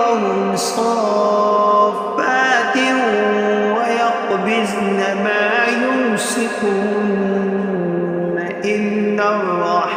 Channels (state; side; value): identical; both; correlation 1.00